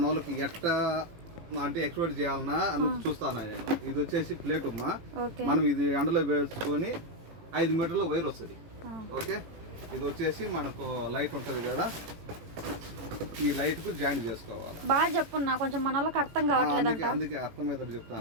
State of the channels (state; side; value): late; left; 18 ms